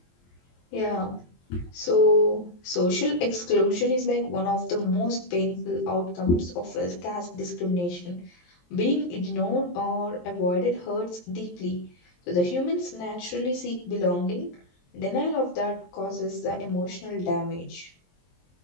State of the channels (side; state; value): right; late; 23 ms